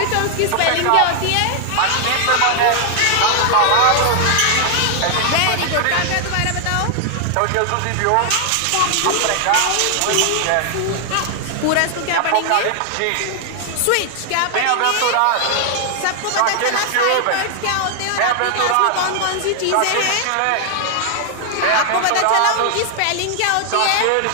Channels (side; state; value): both; different; correlation 0.00